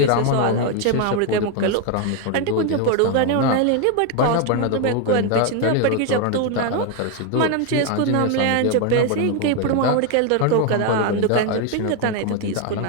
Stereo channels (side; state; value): both; different; correlation 0.01